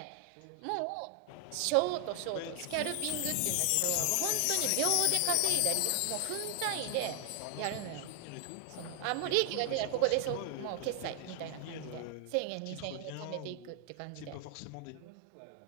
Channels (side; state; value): both; different; correlation 0.00